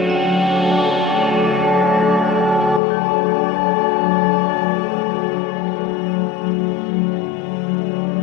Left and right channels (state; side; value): drops out; right; at 2.8 s